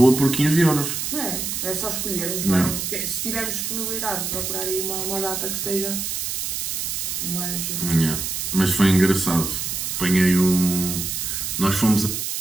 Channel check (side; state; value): right; noise; hiss, 3 dB below the sound